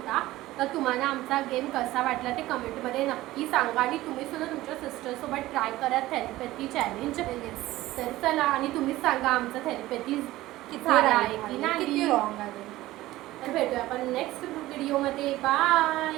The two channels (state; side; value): quieter; left; 16.8 dB